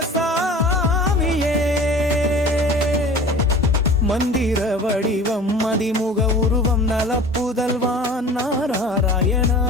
சாமியே மந்திர வடிவம் மதிமுக உருவம் நலப்புதல்வான் நாராயணா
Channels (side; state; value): both; normal; correlation 0.42